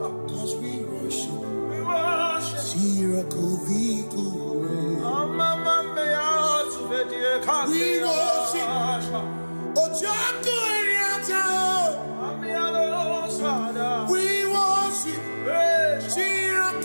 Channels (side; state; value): both; inverted; correlation -1.00